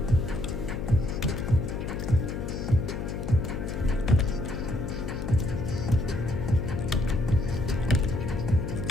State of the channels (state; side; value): noise; left; hum, 5 dB below the sound